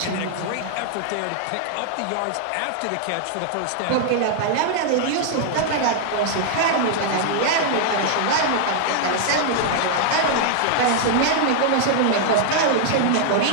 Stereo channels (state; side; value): different; both; correlation -0.01